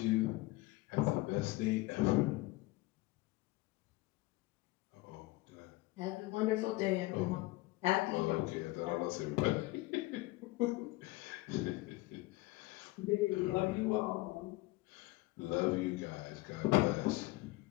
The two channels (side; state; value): right; quieter; 20.7 dB